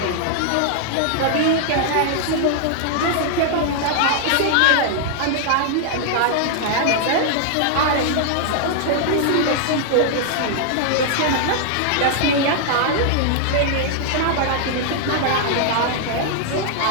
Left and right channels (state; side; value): different; both; correlation -0.01